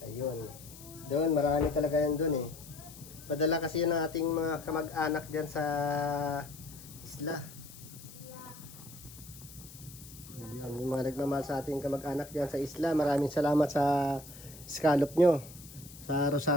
Ayun. Doon, marami talaga yan doon eh. Padala kasi yan ng ating mga kamag-anak dyan sa isla. Ayun, yung mga nagmamahal sa ating kamag-anak dyan sa isla, maraming salamat sa scallop nyo. Sa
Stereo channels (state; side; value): noise; left; hiss, 17 dB below the sound